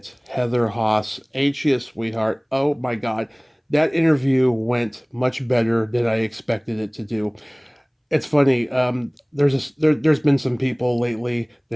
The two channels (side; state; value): both; identical; correlation 1.00